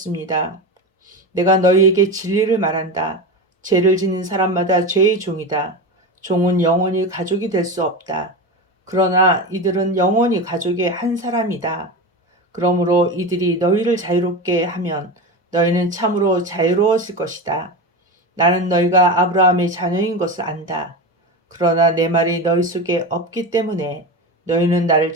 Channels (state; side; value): normal; both; correlation 0.22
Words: 내가 너희에게 진리를 말한다. 죄를 짓는 사람마다 죄의 종이다. 종은 영원히 가족이 될 수 없다. 그러나 이들은 영원히 가족의 한 사람이다. 그러므로 이들이 너희를 자유롭게 하면 너희는 참으로 자유로워질 것이다. 나는 너희가 아브라함의 자녀인 것을 안다. 그러나 내 말이 너희 속에 없기 때문에 너희는 나를